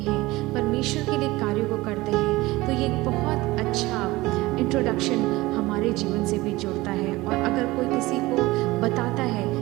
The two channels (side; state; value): left; quieter; 19.8 dB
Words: परमेश्वर के लिए कार्यों को करते हैं, तो ये एक बहुत अच्छा इंट्रोडक्शन हमारे जीवन से भी जुड़ता है। और अगर कोई किसी को बताता है